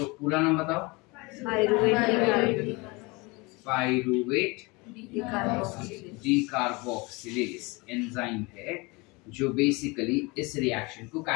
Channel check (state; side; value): quieter; right; 25.9 dB